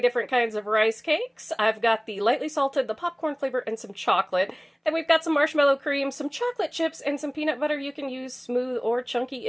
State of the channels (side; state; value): both; identical; correlation 1.00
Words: different kinds of rice cakes. I've got the lightly salted, the popcorn flavor, and some chocolate. Then we've got some marshmallow cream, some chocolate chips, and some peanut butter. You can use smooth or chunky.